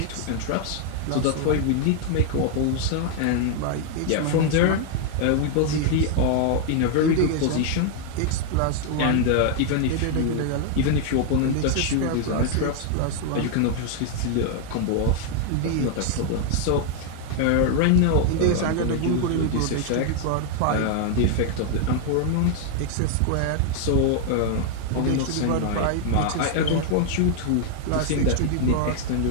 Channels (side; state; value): both; different; correlation 0.00